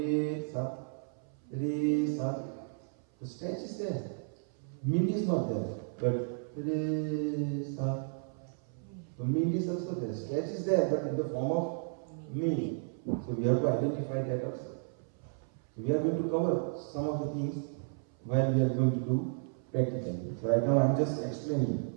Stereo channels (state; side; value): silent; left; 56 dB below the other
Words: sa, the stretch is there. Mint is not there, but re sa. So mint is also there. Stretch is there, but in the form of mint. So we have to identify that also. So we are going to cover some of the things while we are going to do practically. So right now I am just